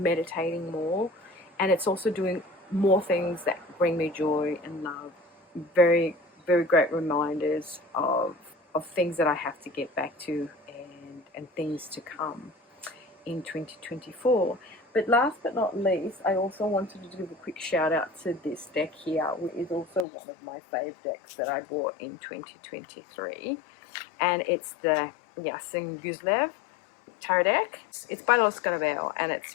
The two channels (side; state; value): right; drops out; at 20.1 s